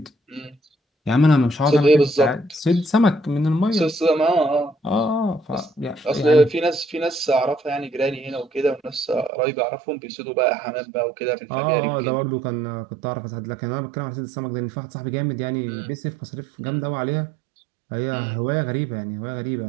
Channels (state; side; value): drops out; left; at 9.3 s